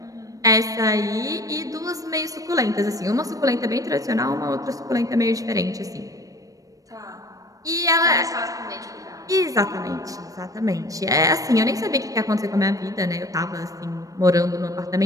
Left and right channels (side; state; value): left; late; 0.16 ms